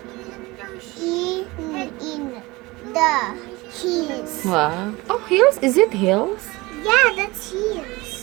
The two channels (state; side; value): quieter; left; 22.2 dB